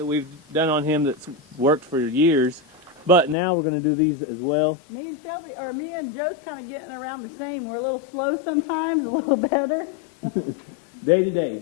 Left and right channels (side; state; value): right; drops out; at 3.4 s